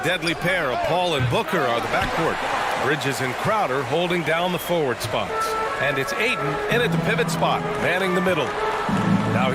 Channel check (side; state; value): both; identical; correlation 1.00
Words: deadly pair of Paul and Booker are the backcourt. Bridges and Crowder holding down the forward spots. And it's Ayton in at the pivot spot, manning the middle. Now